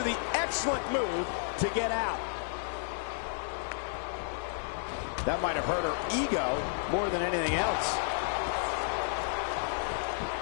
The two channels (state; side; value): silent; right; 57 dB below the other